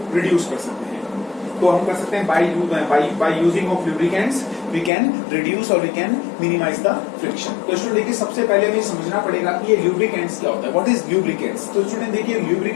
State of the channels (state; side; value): drops out; right; at 4.9 s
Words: रिड्यूस कर सकते हैं। तो हम कर सकते हैं by using of lubricants we can reduce और we can minimise the friction. तो स्टूडेंट देखिए सबसे पहले हमें समझना पड़ेगा कि ये ल्यूब्रिकेंट्स क्या होता है, व्हाट इज ल्यूब्रिकेंट्स। तो स्टूडेंट देखिए